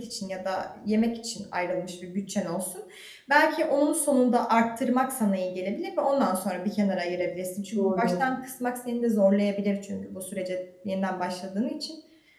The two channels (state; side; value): identical; both; correlation 1.00